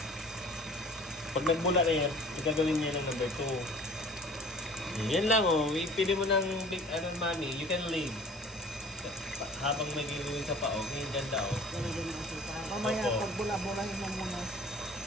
Pag nagbula na yan, gagawin niya ng number 2. Yan lang, oh. Pili mo ng big, mami. You can leave. Habang may gagawin sa pao, yung ganda, oh. Mamaya, pag bula-bulahin mo muna.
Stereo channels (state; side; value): normal; both; correlation 0.47